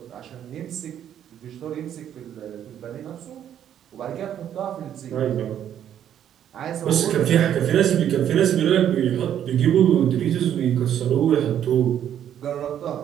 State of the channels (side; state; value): left; quieter; 10.1 dB